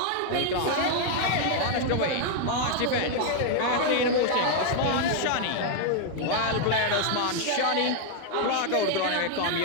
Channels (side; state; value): both; different; correlation 0.00